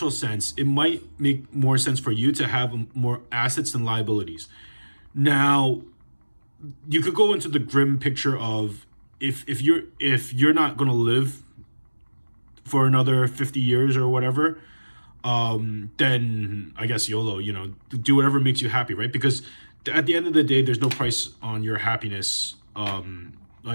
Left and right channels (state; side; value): inverted; both; correlation -1.00